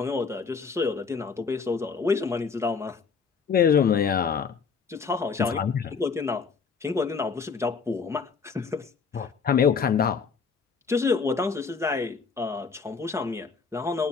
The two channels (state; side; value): quieter; right; 5.5 dB